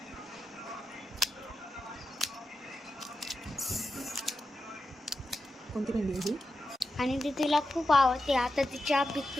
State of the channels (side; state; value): both; normal; correlation 0.89